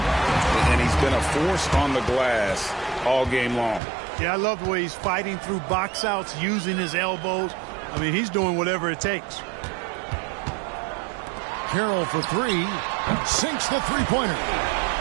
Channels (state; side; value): drops out; left; at 3.8 s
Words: And he's been a force on the glass all game long. Yeah, I love the way he's fighting through box outs, using his elbows. I mean, he's doing whatever it takes. Carroll for three. Sinks the three-pointer.